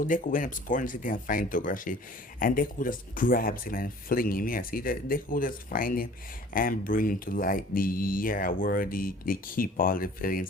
Deku went up scoring the city and find Togarashi, and Deku just grabs him and fling him. Yes, Deku just find him and bring him to like where they keep all the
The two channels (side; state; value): both; normal; correlation 0.49